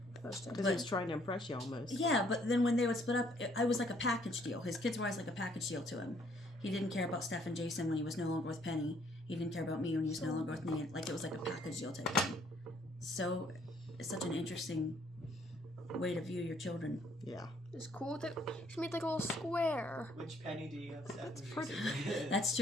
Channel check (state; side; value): normal; both; correlation 0.65